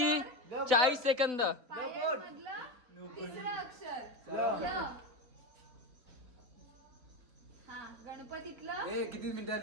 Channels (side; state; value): left; late; 4.0 ms